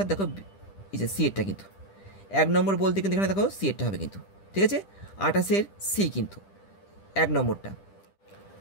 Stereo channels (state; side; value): late; right; 10 ms